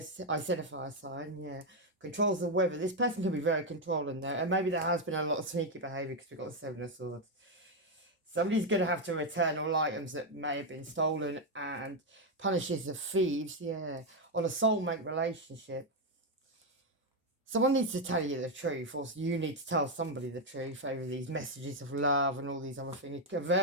I said a fire sign, yeah. Controls the weather. This person could be very controlling there, and maybe there has been a lot of sneaky behaviour because we've got the 7 of Swords. Somebody's going to have to return all items that may have been stolen, and punishes the thieves, yeah, on a soulmate relationship. Someone needs to tell you the truth, or you need to tell somebody the truth over these messages of love and all these other things. A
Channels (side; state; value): both; normal; correlation 0.04